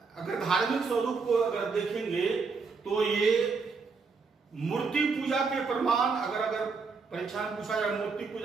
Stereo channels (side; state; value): left; quieter; 4.7 dB